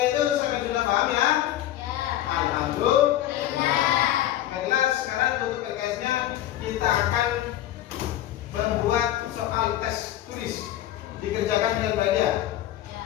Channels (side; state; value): right; quieter; 13.2 dB